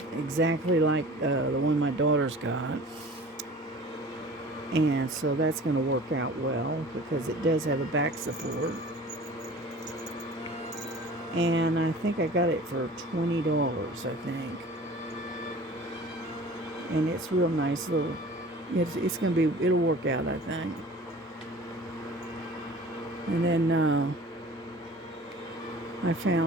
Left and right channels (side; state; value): both; normal; correlation 0.43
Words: like the one my daughter's got, and so that's going to work out well because it does have a back support. And I think I got it for $20, I think. And it's real nice little. It's gonna be. It'll work out, I think. And then I